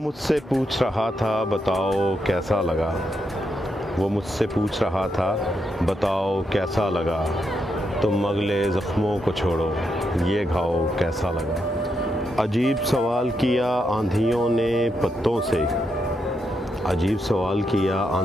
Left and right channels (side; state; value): both; normal; correlation 0.82